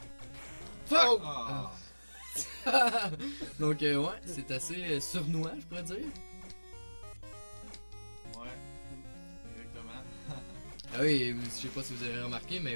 Fuck! Ah! Donc ouais, c'est assez sournois, je pourrais dire. Ouais, exactement. Ah oui, je sais pas si vous avez remarqué,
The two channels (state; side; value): inverted; both; correlation -1.00